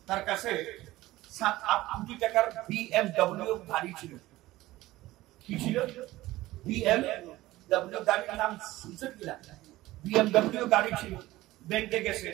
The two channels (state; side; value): quieter; left; 17.3 dB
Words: তার কাছে 7-8 কোটি টাকার BMW গাড়ি ছিল। কি ছিল? BMW গাড়ির নাম শুনছেন কিনা? BMW গাড়ি ছিল। ব্যাংকে গেছে,